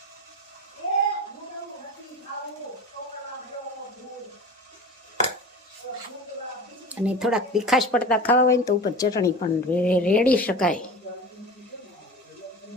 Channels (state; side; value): normal; both; correlation 0.34